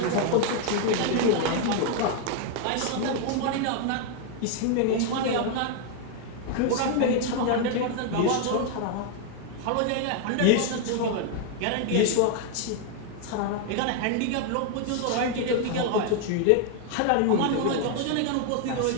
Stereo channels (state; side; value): different; both; correlation 0.00